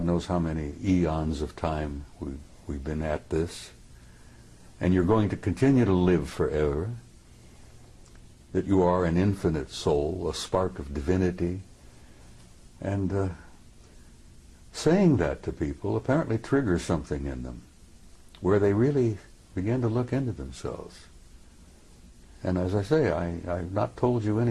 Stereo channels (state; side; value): identical; both; correlation 1.00